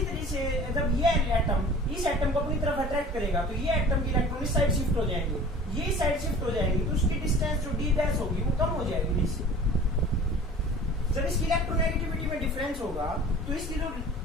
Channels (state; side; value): normal; both; correlation 0.43